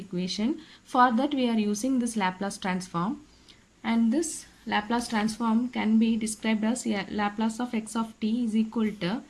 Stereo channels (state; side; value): identical; both; correlation 1.00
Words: For that we are using this Laplace transform, and this Laplace transform can be described as Laplace of x of t is equal to